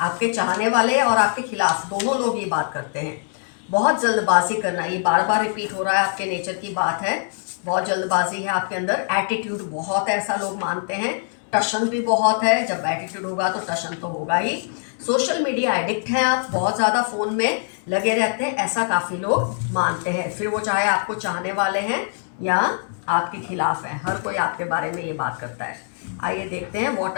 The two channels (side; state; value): right; silent; digital silence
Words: आपके चाहने वाले और आपके खिलाफ दोनों लोग ये बात करते हैं। बहुत जल्दबाजी करना, ये बार बार रिपीट हो रहा है, आपके नेचर की बात है। बहुत जल्दबाजी है आपके अंदर, एटीट्यूड बहुत है, ऐसा लोग मानते हैं। टशन भी बहुत है, जब एटीट्यूड होगा तो टशन तो होगा ही। सोशल मीडिया एडिक्ट हैं आप, बहुत ज़्यादा फ़ोन में लगे रहते हैं, ऐसा काफ़ी लोग मानते हैं। फिर वो चाहे आपको चाहने वाले हैं या आपके खिलाफ हैं, हर कोई आपके बारे में ये बात करता है। आइए देखते हैं what